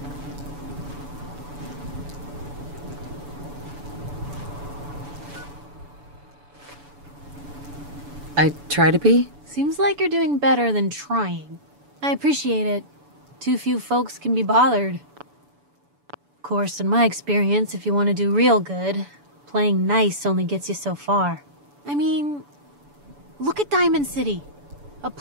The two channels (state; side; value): late; left; 7.0 ms